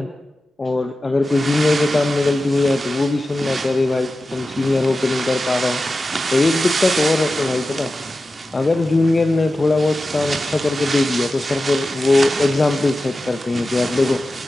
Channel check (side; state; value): both; normal; correlation 0.93